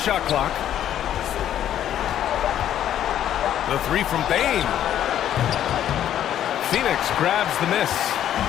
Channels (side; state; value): right; quieter; 11.0 dB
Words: clock. The three from Bain. Phoenix grabs the miss.